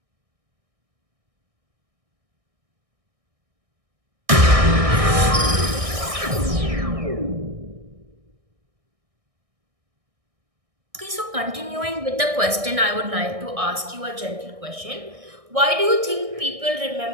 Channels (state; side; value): late; left; 1.6 ms